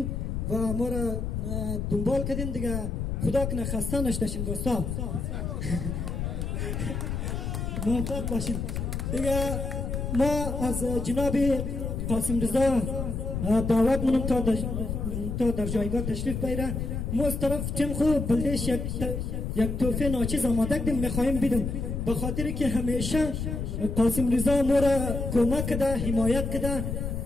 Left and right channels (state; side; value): noise; left; rumble, 3 dB below the sound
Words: و ما را دنبال کردین دیگه خدا کنه خسته نشدشین دوستان موفق باشین دیگه ما از جناب قاسم رضا دعوت منم تا در جایگاه تشریف بیاره ما از طرف تیم خوب بلدش یک توفه ناچیز آماده کردیم میخواهیم بیدم به خاطر که همیشه قاسم رضا ما را کمک کده حمایت کده